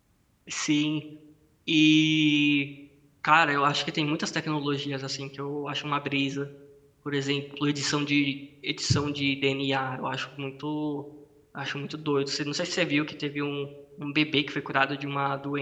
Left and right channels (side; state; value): both; identical; correlation 1.00